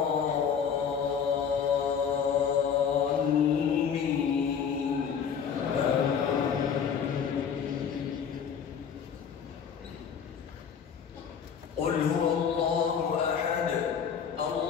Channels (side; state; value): right; quieter; 7.3 dB